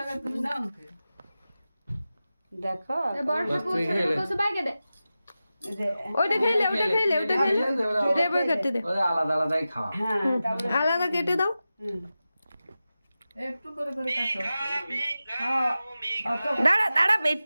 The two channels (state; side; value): inverted; both; correlation -0.94